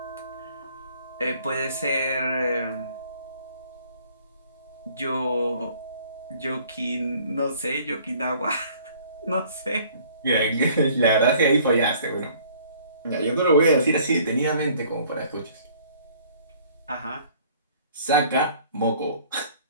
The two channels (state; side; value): inverted; both; correlation -0.56